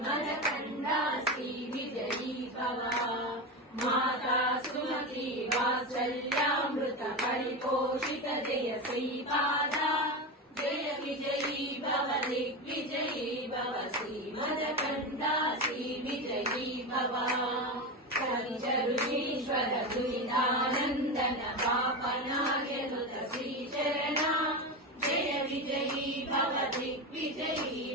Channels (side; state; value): both; normal; correlation 0.19